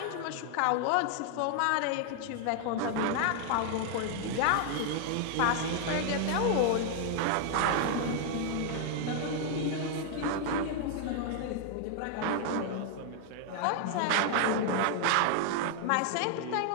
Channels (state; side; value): different; both; correlation 0.00